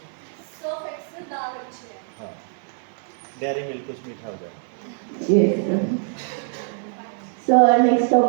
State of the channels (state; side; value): silent; left; 61 dB below the other